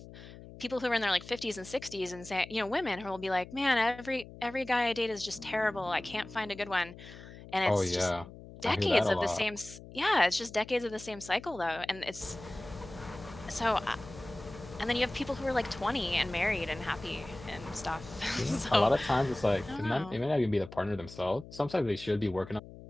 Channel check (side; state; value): left; noise; hum, 16 dB below the sound